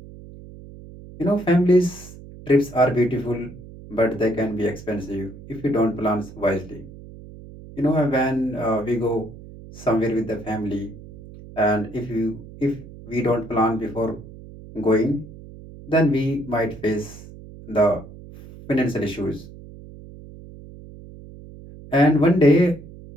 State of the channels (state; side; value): noise; right; hum, 17 dB below the sound